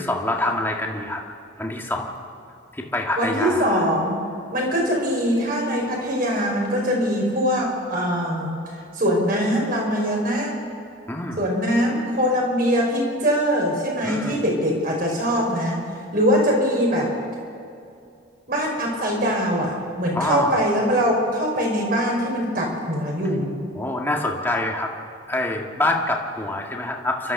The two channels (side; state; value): both; normal; correlation 0.33